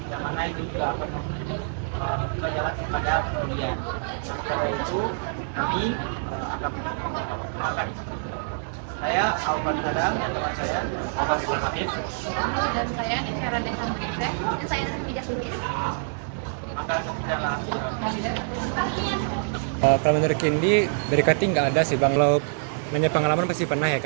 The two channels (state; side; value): silent; left; digital silence